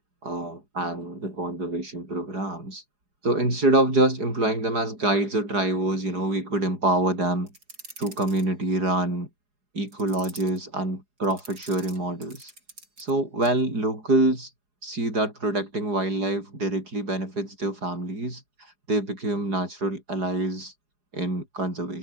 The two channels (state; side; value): late; left; 4.8 ms